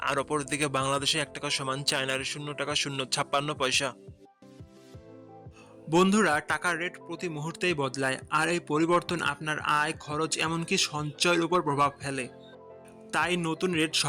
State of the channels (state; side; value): identical; both; correlation 1.00